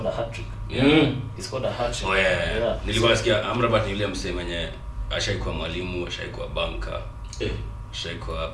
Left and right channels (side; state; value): both; identical; correlation 1.00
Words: a hat-trick. He scored a hat-trick. Nilikuwa nasikia Amrabat ni yule msee mwenye ashaikuwa mwalimu, ashaikuwa banka, ashaikuwa